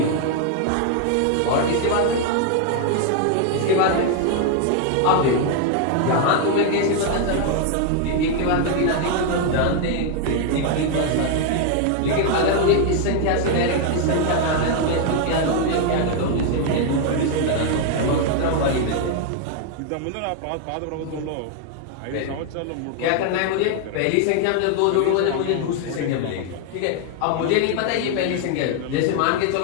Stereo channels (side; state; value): both; different; correlation 0.00